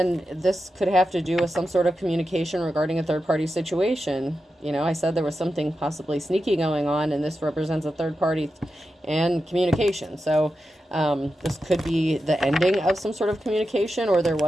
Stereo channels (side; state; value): both; normal; correlation 0.90